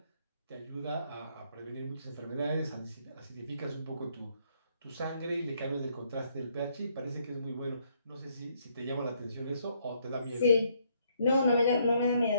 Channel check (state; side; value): inverted; both; correlation -0.70